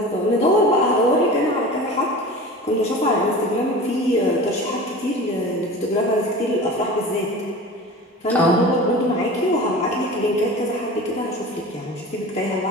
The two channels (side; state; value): both; normal; correlation 0.35